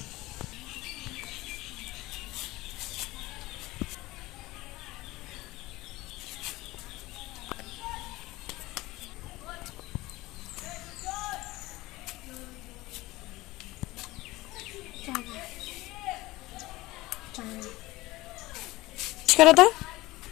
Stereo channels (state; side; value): quieter; right; 19.4 dB